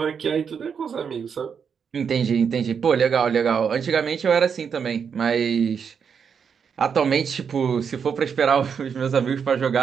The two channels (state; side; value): quieter; left; 6.8 dB